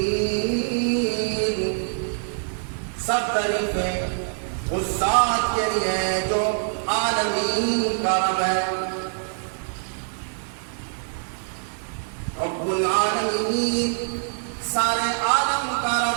سب تعریفیں اس ذات کے لیے جو عالمین کا رب ہے۔ رب العالمین سارے عالم کا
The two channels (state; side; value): silent; left; digital silence